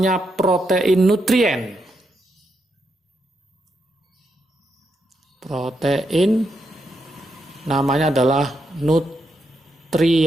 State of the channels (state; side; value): normal; both; correlation 0.82